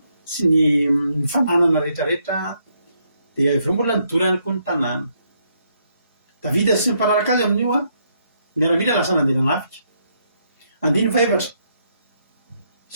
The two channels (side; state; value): both; inverted; correlation -0.75